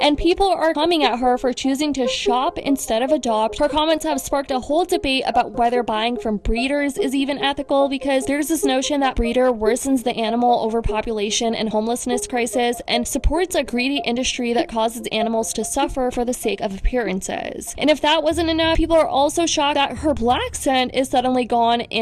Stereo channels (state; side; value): identical; both; correlation 1.00